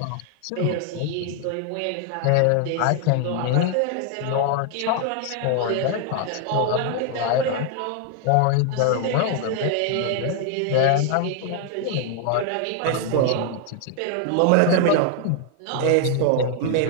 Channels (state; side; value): different; both; correlation 0.00